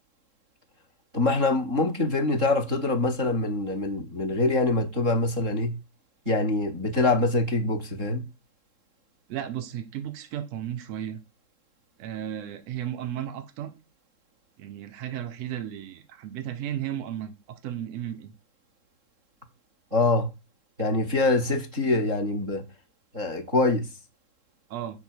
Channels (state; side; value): late; left; 3.7 ms